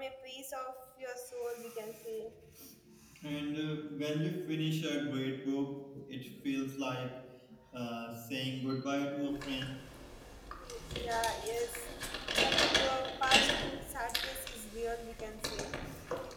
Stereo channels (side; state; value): both; identical; correlation 1.00